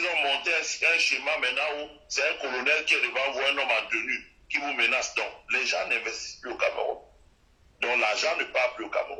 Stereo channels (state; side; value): identical; both; correlation 1.00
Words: ont monté un schéma maintenant où c'est un colonel qui est devant vous, un homme en tenue, qui vous menace. Donc, les gens n'investissent plus au Cameroun. Donc, l'argent ne part plus au